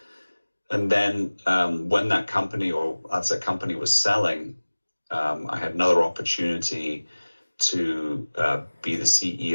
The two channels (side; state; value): both; inverted; correlation -1.00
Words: And then when that company, or as a company was selling, I had another opportunity to be the